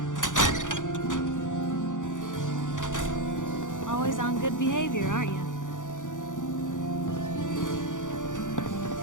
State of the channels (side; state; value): right; late; 0.87 ms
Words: Always on good behavior, aren't you?